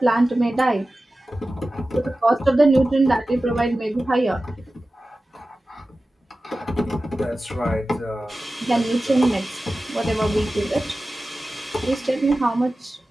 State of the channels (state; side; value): normal; both; correlation 0.95